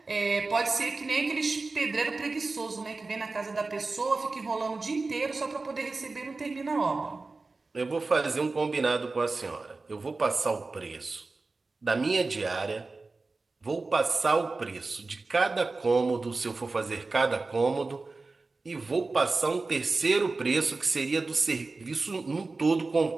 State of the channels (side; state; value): left; quieter; 3.7 dB